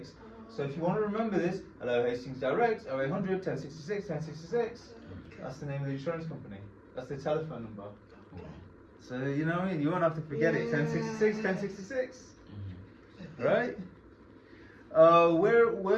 So if you want to remember this, hello Hastings Direct, 0800 1066 1066. That's the name of the insurance company. That's their telephone number. So you know what I mean? You won't have to forget it. 1066 1066. Right?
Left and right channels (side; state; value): both; identical; correlation 1.00